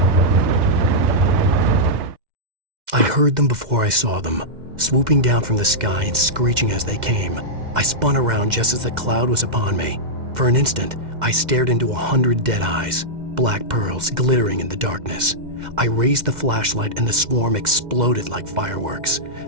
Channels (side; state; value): left; late; 2.1 ms